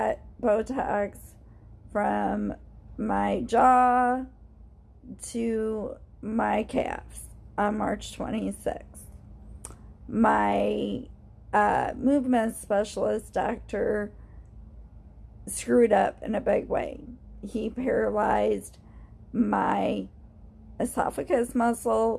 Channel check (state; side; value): identical; both; correlation 1.00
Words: Botox from my jaw to my calves on March 26th. My movement specialist doctor screwed up in a big way. He paralyzed my esophagus